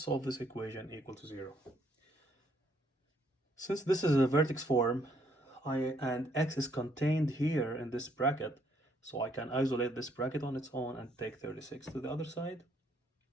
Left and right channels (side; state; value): both; normal; correlation 0.69